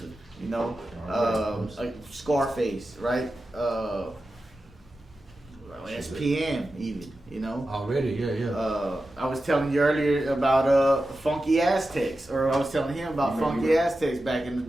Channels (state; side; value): normal; both; correlation 0.92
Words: you know, like Scarface, right? SPM even, you know. Already, yeah. I was telling you earlier about Funky Aztecs, or I was telling him about Funky Aztecs back in the